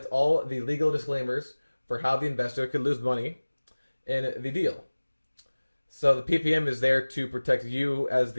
all the legal disclaimers for how the investor could lose money in the deal. So the PPM is there to protect you as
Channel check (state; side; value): inverted; both; correlation -1.00